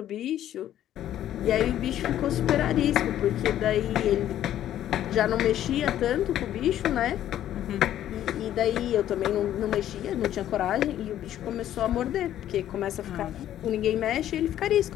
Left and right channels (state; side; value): quieter; right; 11.8 dB